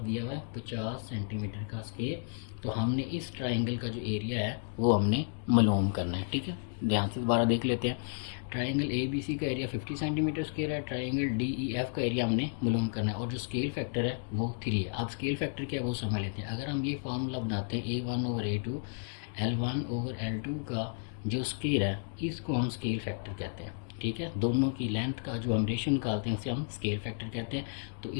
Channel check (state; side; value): silent; right; digital silence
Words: दिया हुआ है 50 सेंटीमीटर का स्क्वायर। तो हमने इस ट्राइंगल का जो एरिया है वो हमने मालूम करना है। ठीक है, ध्यान से दोबारा देख लेते हैं। ट्राइंगल ABC का एरिया 50 सेंटीमीटर स्क्वायर है, ट्राइंगल DEF का एरिया हमने मालूम करना है और जो स्केल फैक्टर है वो 3 है। अब स्केल फैक्टर क्या है वो समझ लेते हैं। अगर हम ये फार्मूला बनाते हैं A1/A2 L1/L2 का जो स्केल है इसको हम स्केल फैक्टर कहते हैं। ठीक है, दोनों की लेंथ का जो हम रेशियो निकालते हैं उसे हम स्केल फैक्टर कहते हैं। तो